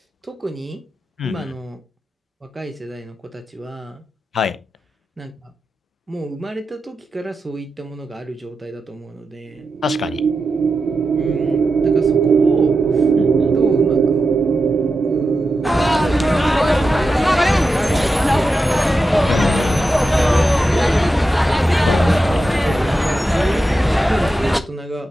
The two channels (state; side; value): normal; both; correlation 0.90